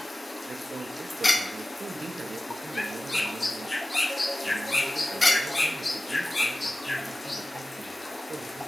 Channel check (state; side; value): normal; both; correlation 0.96